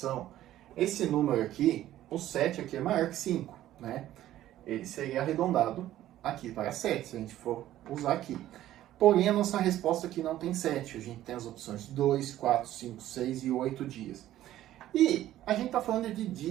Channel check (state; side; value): quieter; left; 13.5 dB